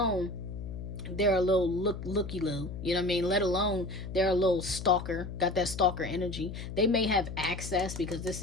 they're a little looky-loo, you know what I mean? Let alone they're a little stalker, got that stalker energy. They may have access because this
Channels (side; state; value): left; noise; hum, 8 dB below the sound